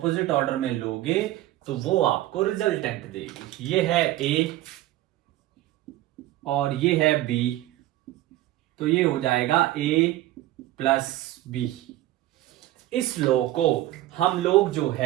ऑर्डर में लोगे तो वो आपको रिजल्टेंट देगी. ये है ए और ये है बी, तो ये हो जाएगा ए प्लस बी. इस लॉ को हम लोग जो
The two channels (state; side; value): quieter; left; 15.3 dB